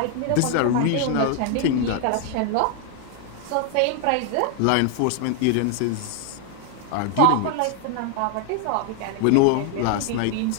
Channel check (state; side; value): different; both; correlation 0.00